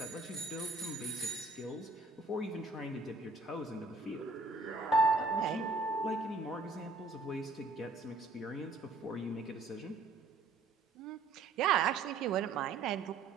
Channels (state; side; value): quieter; left; 3.6 dB